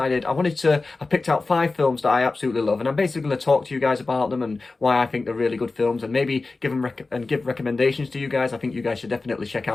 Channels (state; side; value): quieter; right; 3.6 dB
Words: I picked out 5 films that I absolutely love, and I'm basically going to talk to you guys about them and why I think they're really good films, and maybe give recommendations to you guys. I think you guys should definitely check